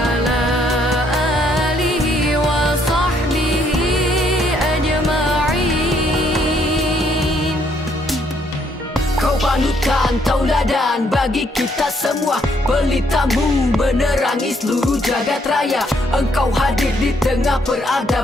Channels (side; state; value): both; normal; correlation 0.70